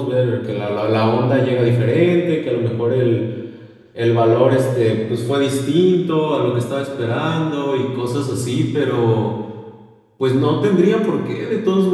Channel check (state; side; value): identical; both; correlation 1.00